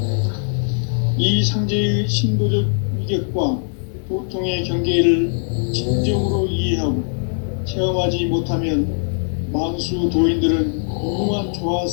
이 상제의 신도적 위격과 도통의 경계를 진정으로 이해하고 체험하지 못하면 만수 도인들은 무궁한 조화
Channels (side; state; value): right; silent; digital silence